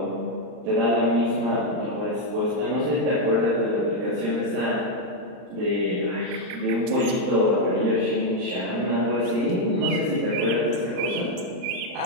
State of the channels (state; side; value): late; left; 39 ms